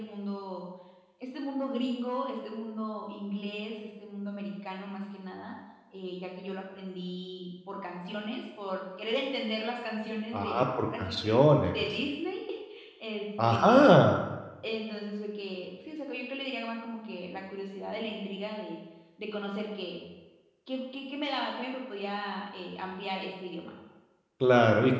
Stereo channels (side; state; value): both; identical; correlation 1.00